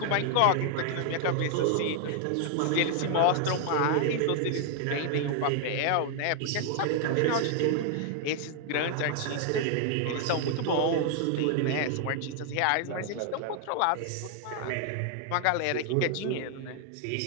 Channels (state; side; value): different; both; correlation 0.00